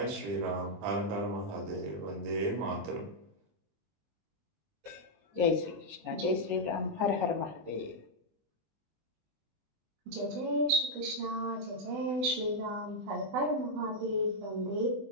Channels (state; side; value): late; left; 20 ms